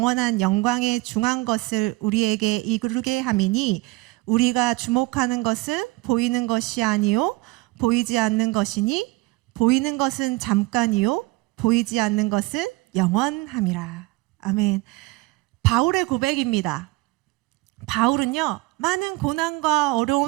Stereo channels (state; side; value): quieter; left; 22.0 dB